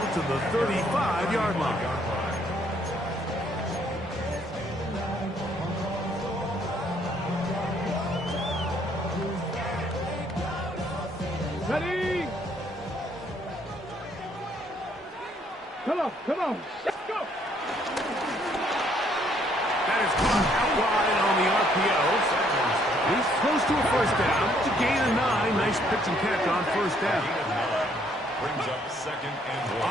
to the 35-yard line. Ready? Come on, come on. Let's go. That is caught out wide on the RPO. He's close to a first down to gain a 9. Nice pitch and catch on first down. Brings up 2nd and 1.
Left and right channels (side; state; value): both; normal; correlation 0.67